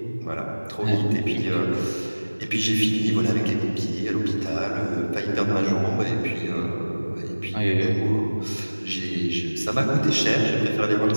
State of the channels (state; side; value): inverted; both; correlation -1.00